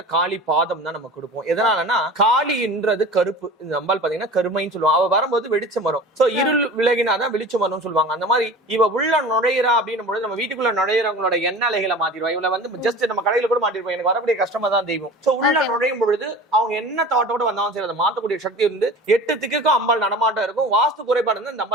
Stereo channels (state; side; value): normal; both; correlation 0.37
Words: காளி பாதம் தான் நம்ம கொடுப்போம். எதனாலன்னா காளின்றது கருப்பு. இந்த அம்பாள் பாத்தீங்கன்னா கருமைன்னு சொல்லுவாங்க. அவ வரும்போது வெளிச்சம் வரும். சோ இருள் விலகினாதான் வெளிச்சம் வரும்னு சொல்லுவாங்க. அந்த மாதிரி இவ உள்ள நுழையிறா அப்படின்னு பொழுது நம்ம வீட்டுக்குள்ள நுழையிறவங்களோட எண்ண அலைகளை மாத்திடுவா. இவளை வந்து ஜஸ்ட் நம்ம கடையில கூட மாட்டிருப்போம். எனக்கு வரக்கூடிய கஷ்டமா தான் தெய்வம். சோ உள்ள நுழையும் பொழுது அவங்க என்ன தாட்டோட வந்தாலும் சரி அதை மாத்தக்கூடிய சக்தி இருந்து 8 திக்குக்கும் அம்பாள் நடமாட்டம் இருக்கும். வாஸ்து குறைபாடு வந்து இந்த